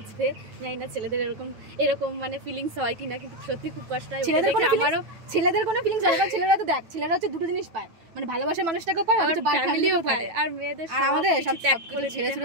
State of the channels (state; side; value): late; left; 9.1 ms